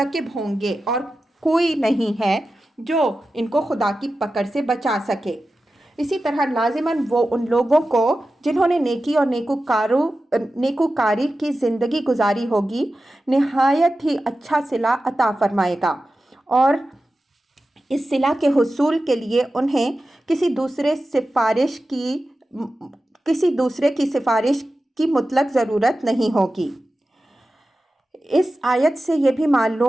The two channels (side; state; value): both; normal; correlation 0.93